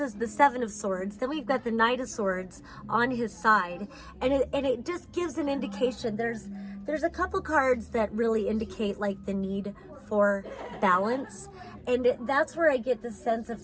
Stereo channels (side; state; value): both; identical; correlation 1.00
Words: is the Seven of Swords, then we've got the Knight of Swords on his side, and it just gives an indication. There's a couple cards that really indicate like the need for balance, and that's where I get the sense of